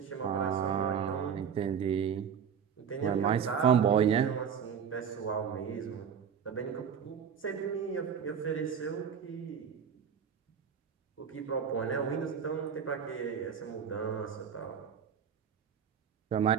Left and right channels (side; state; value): left; quieter; 7.5 dB